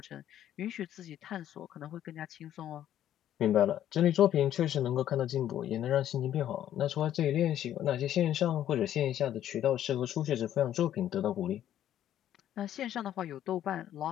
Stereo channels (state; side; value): quieter; right; 11.4 dB